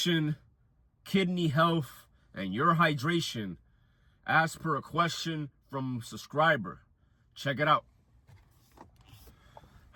kidney health, and your hydration as per a question from a subscriber. Check it out.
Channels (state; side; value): identical; both; correlation 1.00